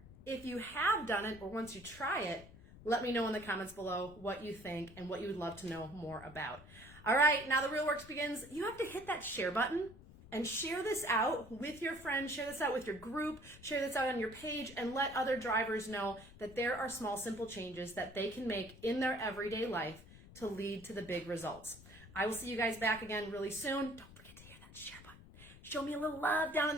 if you have done it or once you try it, let me know in the comments below what you think and what you would love to know more about. All right, now the real work begins. You have to hit that share button and share this out with your friends, share this out with your group, share this out on your page, and let other drivers know that there are small, simple changes that they can make in their everyday life to lead to the big results. I will see you guys back again really soon. Don't forget to hit that share button. Show me a little love down in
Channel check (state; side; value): noise; left; rumble, 19 dB below the sound